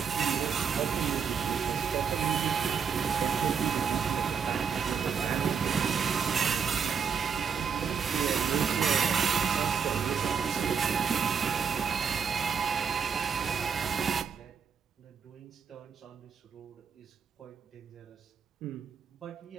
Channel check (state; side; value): quieter; left; 6.6 dB